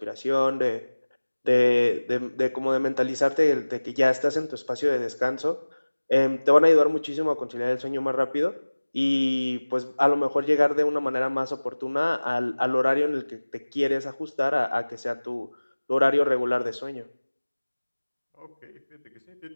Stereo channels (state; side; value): inverted; both; correlation -1.00